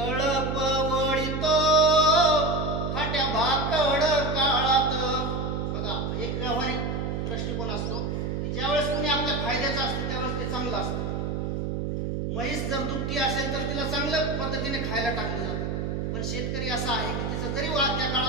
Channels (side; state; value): right; noise; hum, 2 dB below the sound